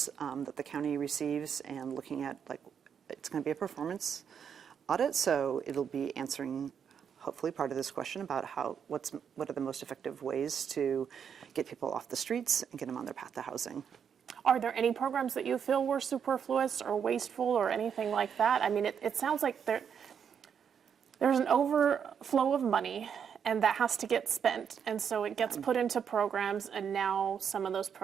that the county receives, and looking at, like, it's going to be a performance audit, so it'll be answering hopefully part of this question about what are the most effective ways to get people off the streets and get them on their path to housing. Are there any programs that you feel were superfluous or wasteful or anything like that? I mean, it sounds like there's an overflow of money, and that has to get spent. And so it gets put into programs, and now some of those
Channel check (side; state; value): left; quieter; 7.5 dB